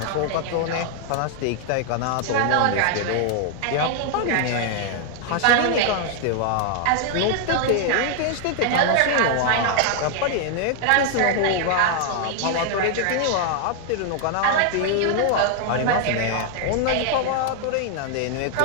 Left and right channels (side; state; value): both; different; correlation 0.00